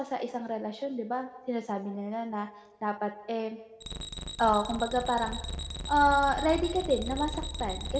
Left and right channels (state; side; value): identical; both; correlation 1.00